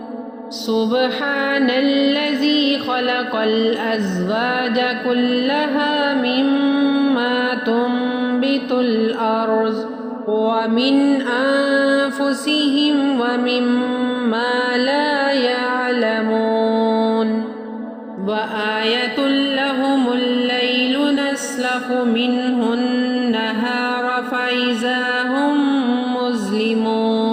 سبحان الذي خلق الأزواج كلها مما تنبت الأرض ومن أنفسهم ومما لا يعلمون وآية لهم الليل نسلخ منه النهار فإذا هم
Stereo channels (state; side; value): identical; both; correlation 1.00